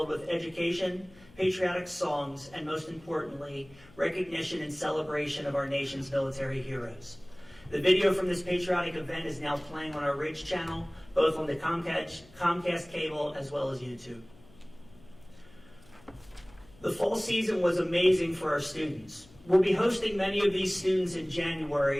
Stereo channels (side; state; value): left; noise; hum, 25 dB below the sound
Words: with education, patriotic songs, and most importantly, recognition and celebration of our nation's military heroes. The video from this patriotic event is now playing on our Ridge channel, both on the Comcast cable as well as YouTube. The fall season was amazing for our students. We'll be hosting many of these students in